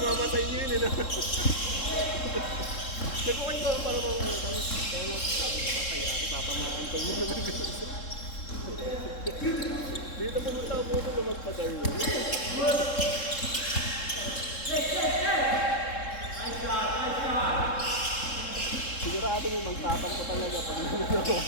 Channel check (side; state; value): right; late; 3.7 ms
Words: sa inyo yun eh. Nagpukay ko para mga ano. Tapos, kaya lang, sabi ko papayari, papamahin ko muna ng ganun. Dito pumunta ako muna na magpag-arlo. Sigurado mo magtapang ko talaga pag nanagawa.